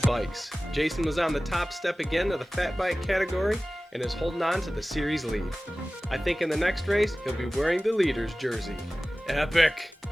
Jason was on the top step again of the fat bike category and is holding on to the series lead. I think in the next race, he'll be wearing the leader's jersey. Epic!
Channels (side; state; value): both; normal; correlation 0.97